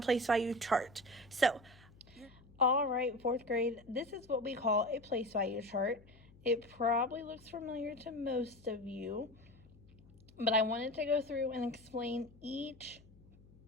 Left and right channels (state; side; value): noise; left; hum, 24 dB below the sound